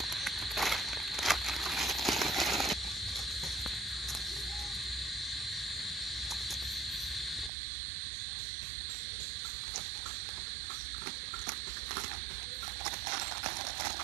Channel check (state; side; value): drops out; left; at 7.5 s